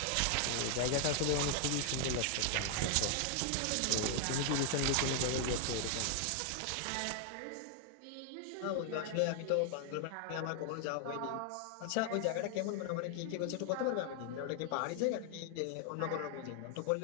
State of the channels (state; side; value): different; both; correlation 0.00